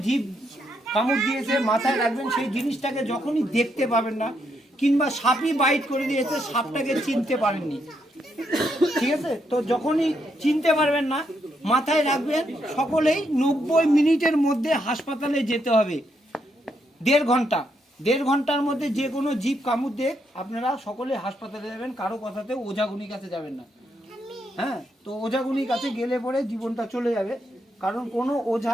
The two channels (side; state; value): both; normal; correlation 0.78